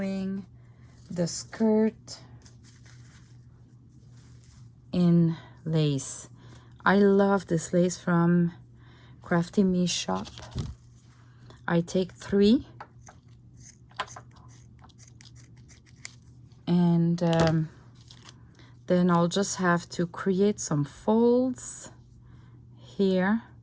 the skirt in lace. I love this lace from Crafty Me shop. I take 3, and then I'll just have to create some folds here,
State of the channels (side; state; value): both; identical; correlation 1.00